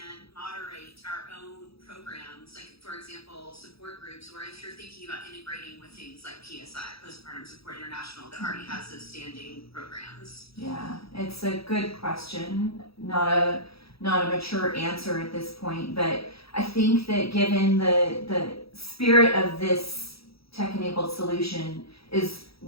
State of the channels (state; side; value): late; right; 0.77 ms